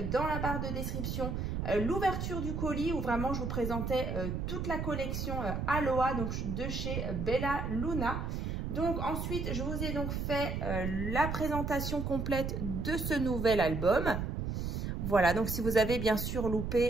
dans la barre de description l'ouverture du colis où vraiment je vous présentais toute la collection Aloha donc de chez Bella Luna. Donc ensuite, je vous ai donc fait la présentation complète de ce nouvel album. Voilà, donc si vous avez bien sûr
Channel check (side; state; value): right; noise; rumble, 3 dB below the sound